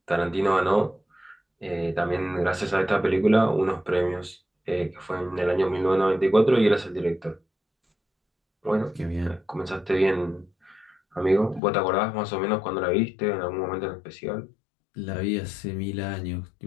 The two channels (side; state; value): right; drops out; at 11.6 s